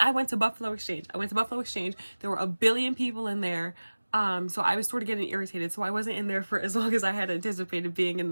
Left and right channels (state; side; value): inverted; both; correlation -1.00